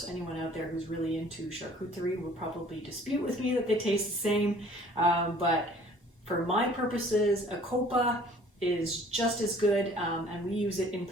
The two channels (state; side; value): normal; both; correlation 0.53